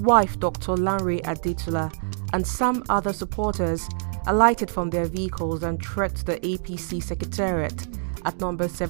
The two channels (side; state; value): left; silent; digital silence